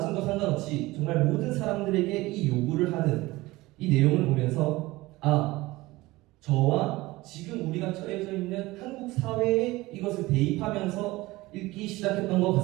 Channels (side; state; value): left; quieter; 19.8 dB